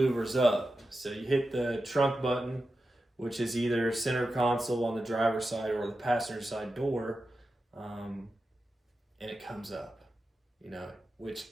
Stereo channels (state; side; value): normal; both; correlation 0.91